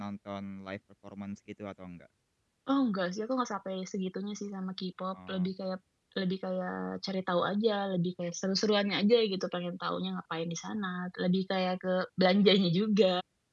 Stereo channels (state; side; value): identical; both; correlation 1.00